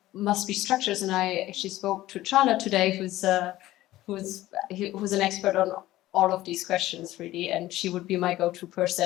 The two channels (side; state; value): right; quieter; 15.8 dB